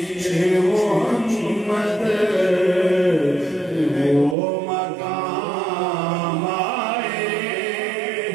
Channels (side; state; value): left; drops out; at 4.4 s